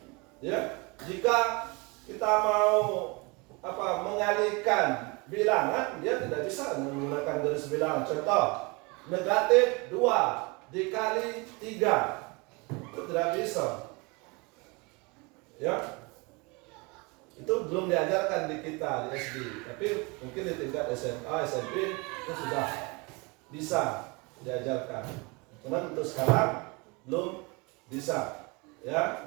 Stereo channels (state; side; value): quieter; left; 28.1 dB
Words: Ya, jika kita mau mengalihkan bilangan, dia tidak bisa menggunakan garis bilangan. Contoh, negatif 2 dikali 3 itu tidak bisa. Ya, itu belum diajarkan di kita di SD, tapi mungkin di tingkat SMA, SMP itu sudah bisa diajarkan. Cuman untuk sekarang belum bisa, ya,